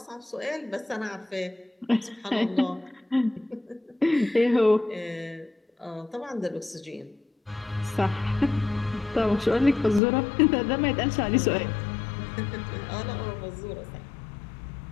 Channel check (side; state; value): right; drops out; at 10.0 s